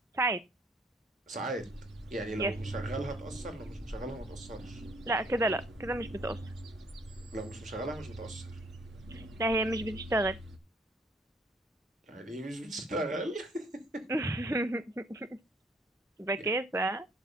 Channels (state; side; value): normal; both; correlation 0.63